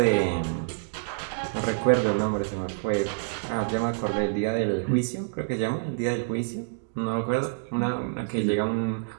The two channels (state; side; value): silent; left; digital silence